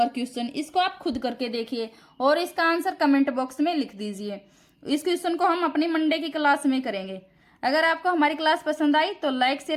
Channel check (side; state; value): both; identical; correlation 1.00